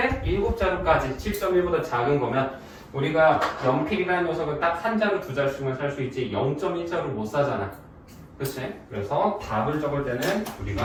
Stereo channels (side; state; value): both; identical; correlation 1.00